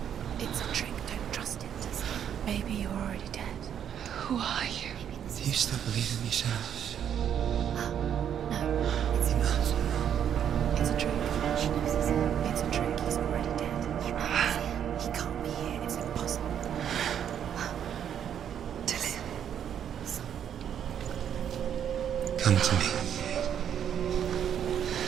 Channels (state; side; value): quieter; left; 9.1 dB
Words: It's a trick. Don't trust it. Maybe you're already dead. Who are you? Do you still believe in yourself? No, it's not. It's a trick. She knows it's him. It's a trick. He's already dead. He knows it. He can't be here. It's impossible. Come to me.